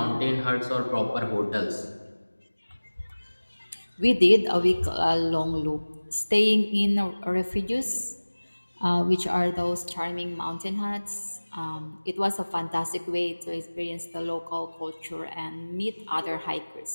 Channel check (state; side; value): inverted; both; correlation -1.00